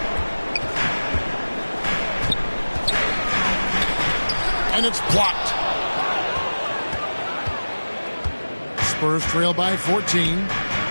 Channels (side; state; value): both; inverted; correlation -1.00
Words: And it's blocked. Spurs trail by 14.